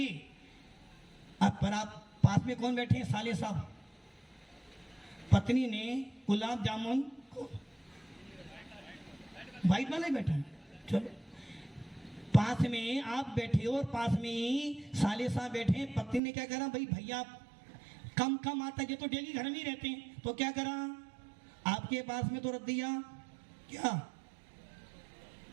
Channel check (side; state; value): left; drops out; at 16.2 s